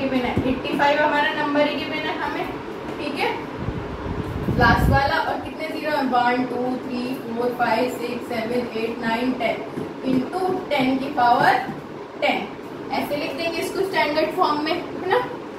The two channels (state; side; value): identical; both; correlation 1.00